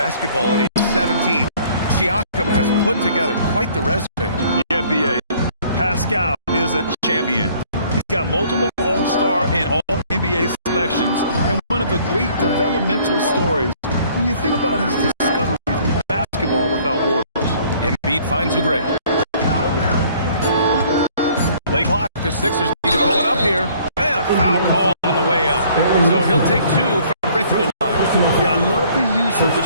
at age 17, Siakam has put together quite the resume. Yeah, BA. Pascal is a champion. He's got multiple All-Star and All-NBA selections, and one of the great developmental stories when you think about his discovery of basketball without borders. Embiid finds Oubre. Late clock, the Sixers need to pull it up here. And a foul call on the way up. So he'll take 2 from the free throw line. Yeah, I love the use of the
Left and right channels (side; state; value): both; inverted; correlation -0.58